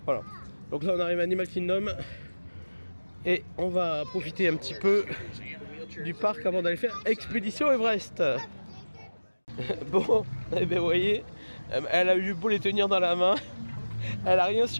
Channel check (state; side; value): inverted; both; correlation -1.00